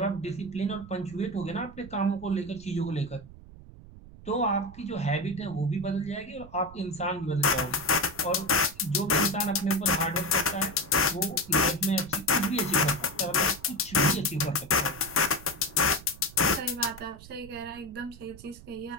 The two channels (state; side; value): noise; right; rumble, 18 dB below the sound